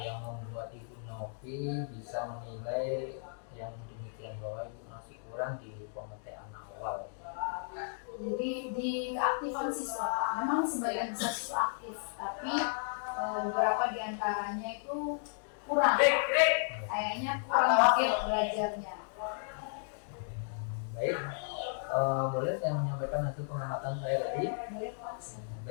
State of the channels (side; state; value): right; silent; digital silence